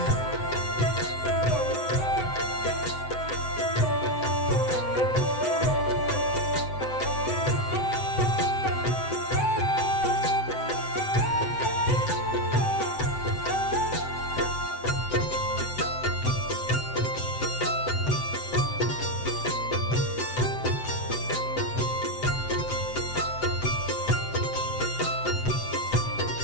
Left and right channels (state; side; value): late; right; 7.9 ms